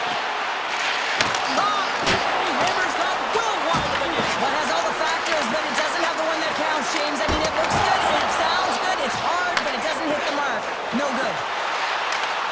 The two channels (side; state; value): both; identical; correlation 1.00